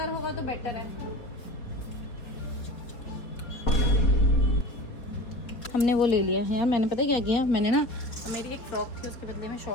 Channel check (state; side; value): late; right; 4.2 ms